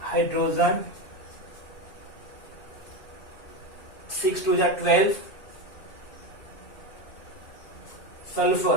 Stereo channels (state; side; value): late; right; 2.6 ms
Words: Hydrogen 6 to the 12.